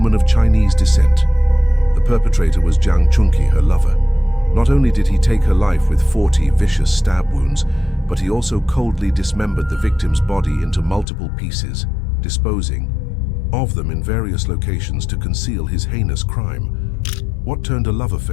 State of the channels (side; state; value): right; drops out; at 11.1 s